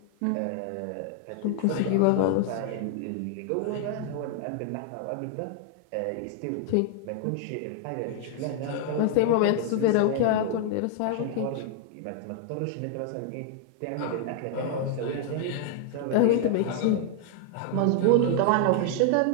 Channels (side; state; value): both; different; correlation 0.00